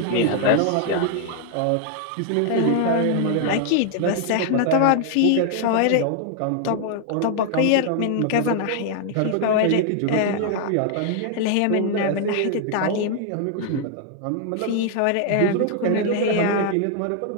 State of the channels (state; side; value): different; both; correlation 0.00